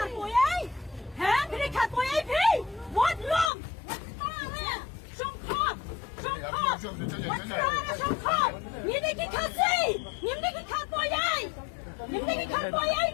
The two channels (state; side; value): drops out; right; at 3.5 s